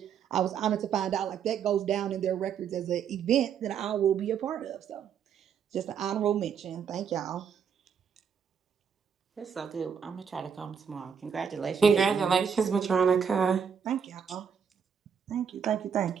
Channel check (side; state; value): left; quieter; 7.2 dB